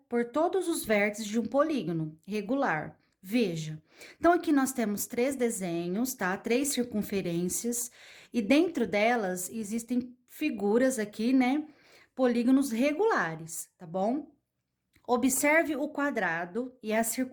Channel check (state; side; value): identical; both; correlation 1.00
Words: por todos os vértices de um polígono regular. Veja, então aqui nós temos três desenhos, tá? Três circunferências, e dentro delas existem figuras aqui, né? Polígonos regulares, tá bom? Observe o quadrado e a